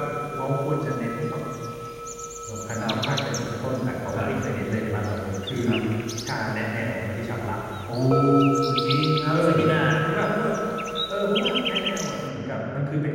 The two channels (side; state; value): both; identical; correlation 1.00